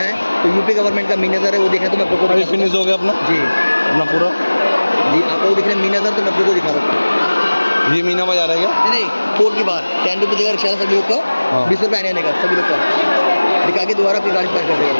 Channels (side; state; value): both; inverted; correlation -1.00